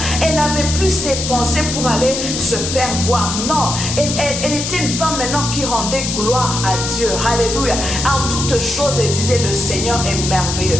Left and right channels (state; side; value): noise; left; hiss, 4 dB below the sound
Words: Elle n'avait plus ses pensées pour aller se faire voir. Non, elle était une femme maintenant qui rendait gloire à Dieu. Alléluia. En toutes choses, elle disait, le Seigneur est merveilleux.